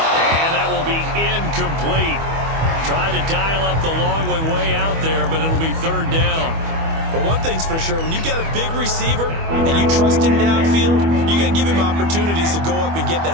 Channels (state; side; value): late; left; 25 ms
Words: And that will be incomplete. Tried to dial up the long one way out there, but it'll be 3rd down. But one thing's for sure, when you got a big receiver and you trust him downfield, you're going to give him opportunities to go up and get